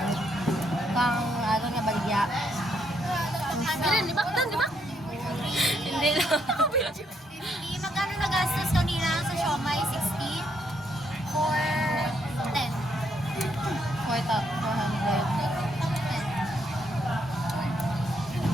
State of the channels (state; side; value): normal; both; correlation 0.74